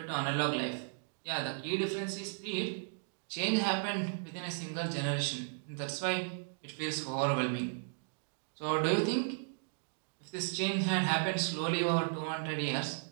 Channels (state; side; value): silent; left; digital silence